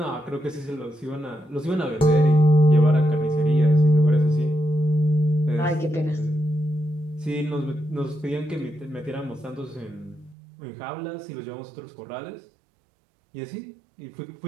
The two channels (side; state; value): left; drops out; at 10.4 s